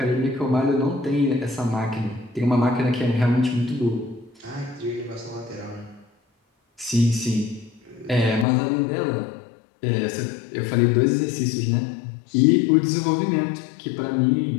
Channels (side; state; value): right; drops out; at 8.5 s